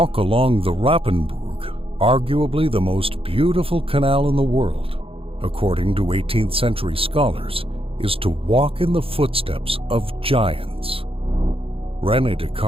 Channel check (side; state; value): left; late; 0.27 ms